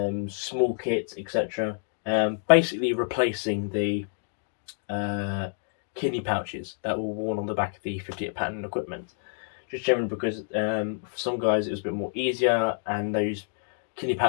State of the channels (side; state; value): right; silent; digital silence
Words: small kits, etc. Basically replacing the kidney pouches that were worn on the back of the 58 pattern equipment. Just generally because for some guys it was a bit more easier, and those kidney